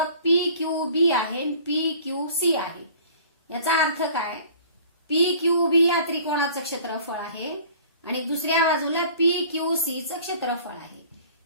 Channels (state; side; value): inverted; both; correlation -0.48